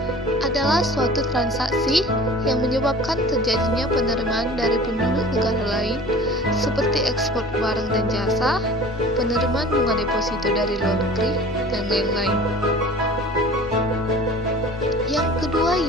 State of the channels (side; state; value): both; normal; correlation 0.42